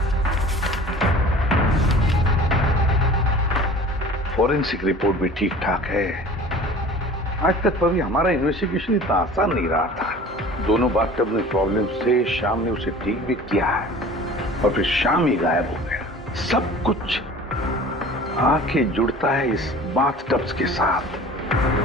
फॉरेंसिक रिपोर्ट भी ठीक ठाक है। आज तक कभी हमारा इन्वेस्टिगेशन इतना आसान नहीं रहा था। दोनों बाथटब में प्रॉब्लम से शाम ने उसे ठीक भी किया है और फिर शाम ही गायब हो गया। सब कुछ आके जुड़ता है इस बाथटब्स के साथ।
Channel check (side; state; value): both; normal; correlation 0.44